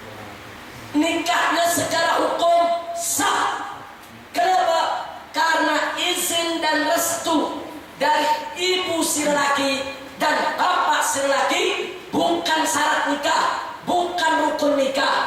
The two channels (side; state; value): both; identical; correlation 1.00